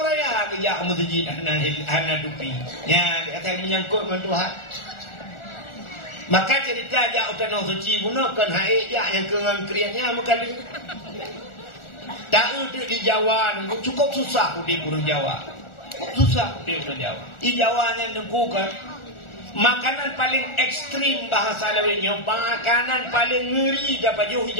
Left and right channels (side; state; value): right; late; 1.4 ms